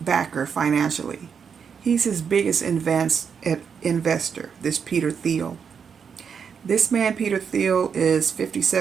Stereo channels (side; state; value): left; quieter; 6.7 dB